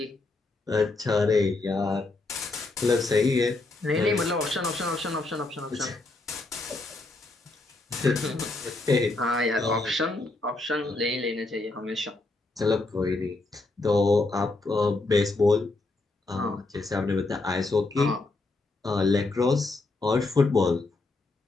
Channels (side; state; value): right; quieter; 3.2 dB